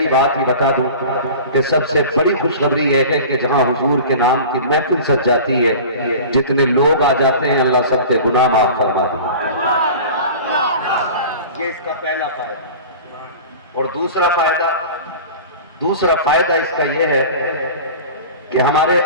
بات ہی بتا دوں کہ سب سے بڑی خوشخبری یہ ہے کہ جہاں حضور کے نام کی محفل سج جاتی ہے، جتنے لوگ آ جاتے ہیں اللہ سب کے گناہ معاف فرما دیں۔ یہ اس کا پہلا فائدہ۔ اور دوسرا فائدہ اس کا یہ ہے کہ ہمارے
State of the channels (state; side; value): inverted; both; correlation -0.37